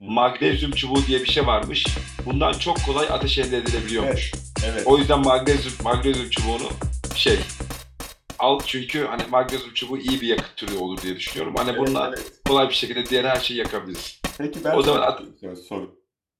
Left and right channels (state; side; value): identical; both; correlation 1.00